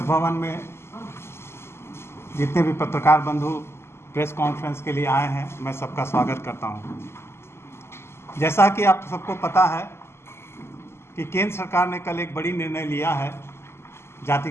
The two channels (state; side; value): late; right; 0.12 ms